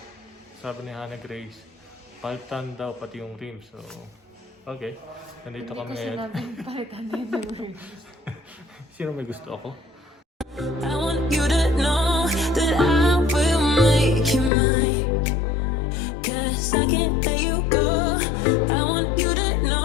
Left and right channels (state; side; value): drops out; right; at 14.5 s